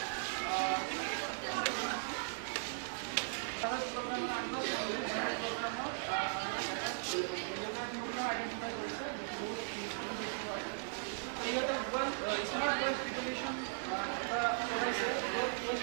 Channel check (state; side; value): silent; left; digital silence